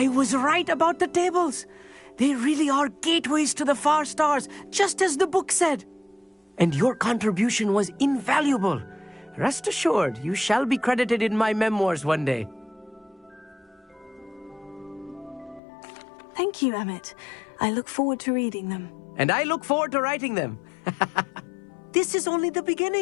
was right about the tables. They really are gateways to the far stars, just as the book said. And your contribution was invaluable. Rest assured, you shall be credited in my memoirs one day. Thank you, Emmett. I look forward to reading them. And I look forward to writing them. This is only the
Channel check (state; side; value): drops out; right; at 15.6 s